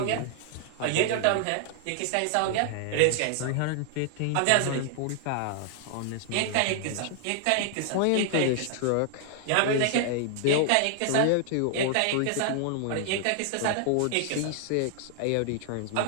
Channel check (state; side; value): different; both; correlation 0.00